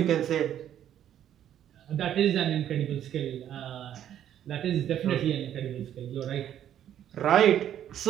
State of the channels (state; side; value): quieter; left; 10.6 dB